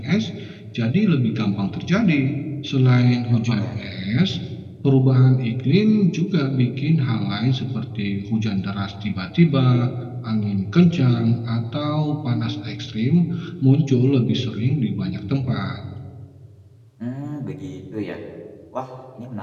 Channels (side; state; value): both; identical; correlation 1.00